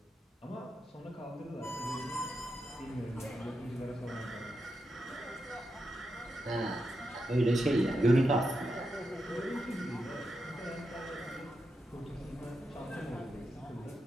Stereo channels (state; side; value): normal; both; correlation 0.86